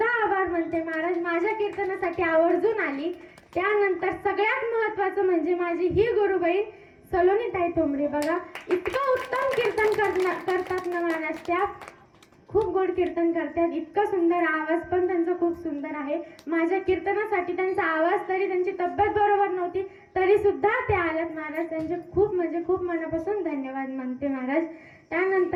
आभार मानते महाराज. माझ्या कीर्तनासाठी आवर्जून आली. त्यानंतर सगळ्यात महत्वाचं म्हणजे माझी ही गुरुबहीण सलोनीताई ठोंबरे. बघा इतकं उत्तम कीर्तन करतात ना महाराज. त्या खूप गोड कीर्तन करतात. इतका सुंदर आवाज पण त्यांचा खूप सुंदर आहे. माझ्या कीर्तनासाठी त्यांचा आवाज, तरी त्यांची तब्येत बरोबर नव्हती तरी सुद्धा ते आल्यात महाराज. त्यांचे खूप म्हणजे खूप मनापासून धन्यवाद मानते महाराज.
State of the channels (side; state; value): both; identical; correlation 1.00